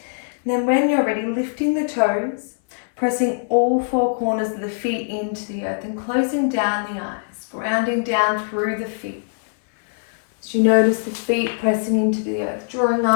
And then when you're ready, lifting the toes, pressing all four corners of the feet into the earth and closing down the eyes, grounding down through the feet. As you notice the feet pressing into the earth, drawing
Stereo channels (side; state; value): right; silent; 59 dB below the other